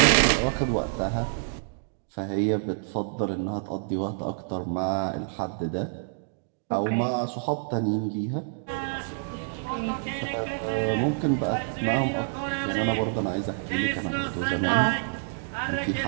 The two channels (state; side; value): silent; left; digital silence